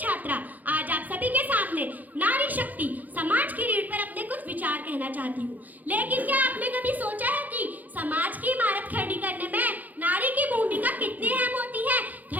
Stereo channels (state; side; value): late; left; 0.082 ms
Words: आज आप सभी के सामने नारी शक्ति समाज की रीढ़ पर अपने कुछ विचार कहना चाहती हूँ। लेकिन क्या आपने कभी सोचा है कि समाज की इमारत खड़ी करने में नारी की भूमिका कितनी अहम होती है?